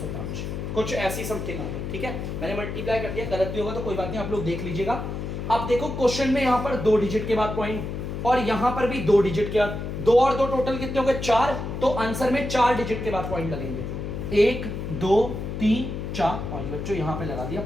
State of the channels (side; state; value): left; noise; hum, 5 dB below the sound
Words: कुछ ऐसी समथिंग आ गई। ठीक है, मैंने मल्टीप्लाई कर दिया, गलत भी होगा तो कोई बात नहीं, आप लोग देख लीजिएगा। अब देखो क्वेश्चन में यहाँ पर 2 डिजिट के बाद पॉइंट और यहाँ पर भी 2 डिजिट के बाद, 2 और 2 टोटल कितने हो गए, 4, तो आंसर में 4 डिजिट के बाद पॉइंट लगेंगे, 1 2 3 4 5। बच्चों यहाँ पे लगा दिया